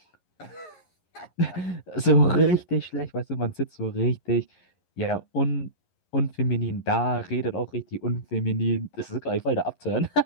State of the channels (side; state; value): right; late; 11 ms